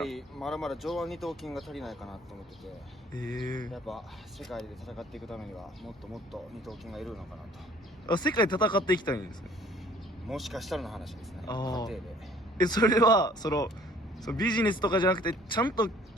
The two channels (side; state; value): both; normal; correlation 0.56